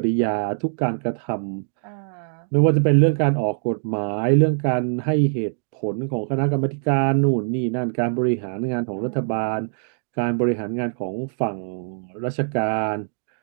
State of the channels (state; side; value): silent; left; digital silence